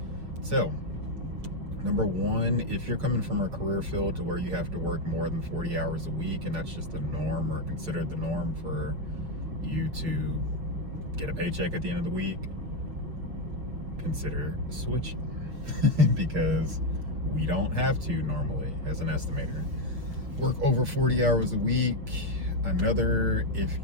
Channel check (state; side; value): late; left; 6.9 ms